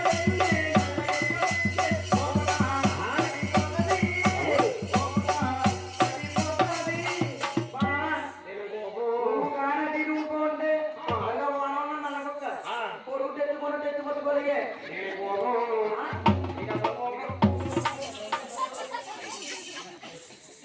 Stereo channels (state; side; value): identical; both; correlation 1.00